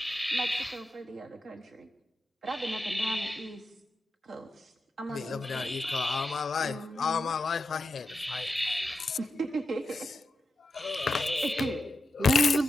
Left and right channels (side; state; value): both; normal; correlation 0.89